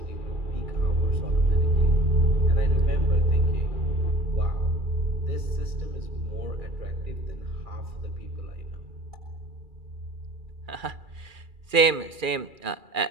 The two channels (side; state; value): left; late; 2.4 ms